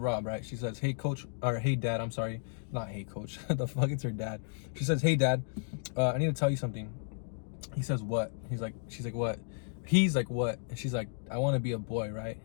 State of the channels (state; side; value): silent; right; digital silence